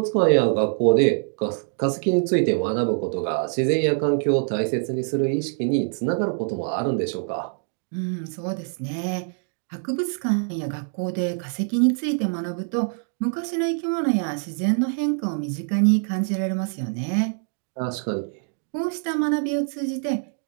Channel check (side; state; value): left; silent; 56 dB below the other